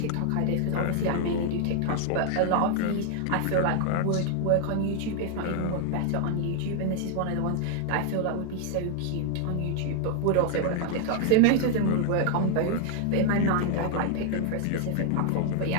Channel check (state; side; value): different; both; correlation 0.00